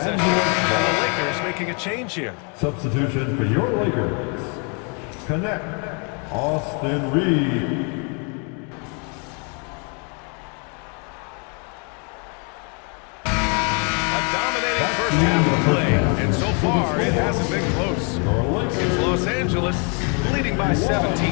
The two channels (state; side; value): quieter; right; 36.3 dB